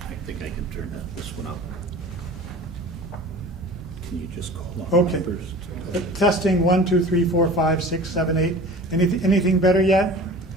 think I can turn this one up. Can you just call on okay. numbers? Testing 1, 2, 3, 4, 5, 6, 7, 8. Anything better yet?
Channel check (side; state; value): both; normal; correlation 0.40